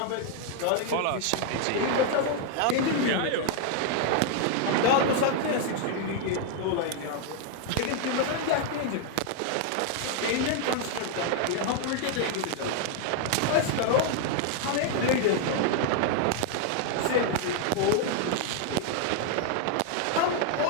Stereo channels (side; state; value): both; different; correlation 0.00